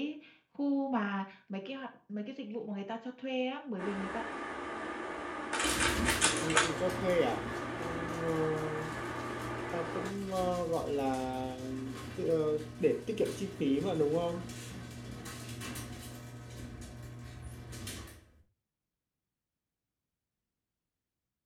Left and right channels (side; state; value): both; identical; correlation 1.00